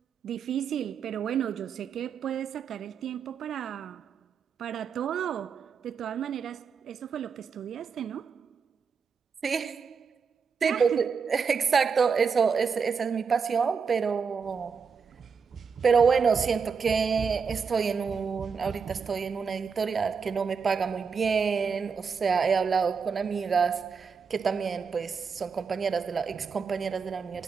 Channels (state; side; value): quieter; left; 5.9 dB